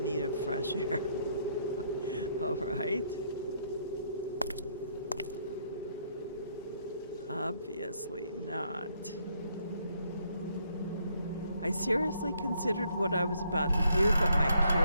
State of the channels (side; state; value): both; inverted; correlation -0.71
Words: need of fresh air. All right. Obviously not. I seriously considered what I was about to do, but my